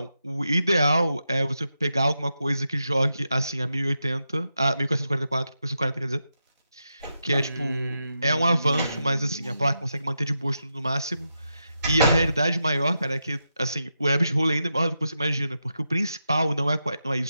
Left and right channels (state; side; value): inverted; both; correlation -0.87